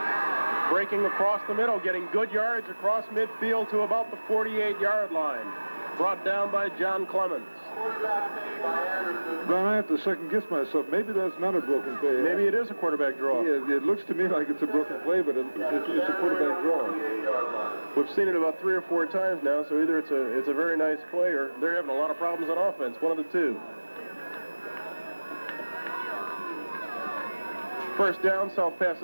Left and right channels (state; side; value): inverted; both; correlation -1.00